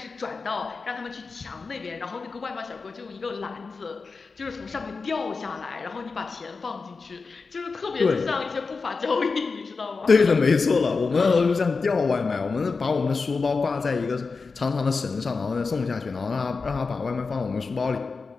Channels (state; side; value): quieter; right; 4.5 dB